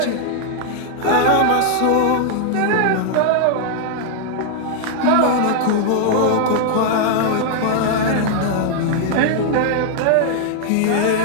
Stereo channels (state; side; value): different; both; correlation -0.01